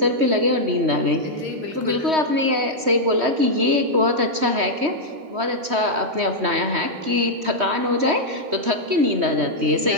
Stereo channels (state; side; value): late; left; 3.2 ms